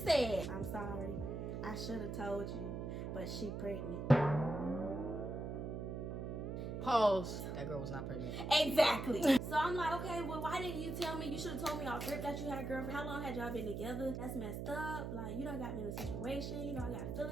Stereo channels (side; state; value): right; noise; hum, 4 dB below the sound